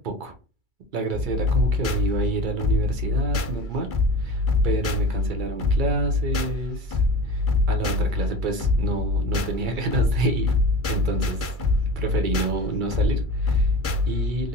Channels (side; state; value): left; late; 2.3 ms